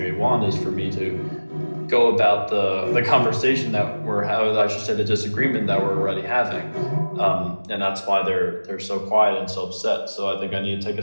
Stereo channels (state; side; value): inverted; both; correlation -1.00